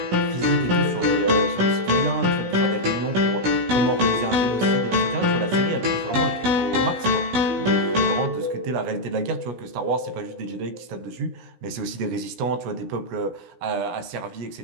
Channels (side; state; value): left; late; 17 ms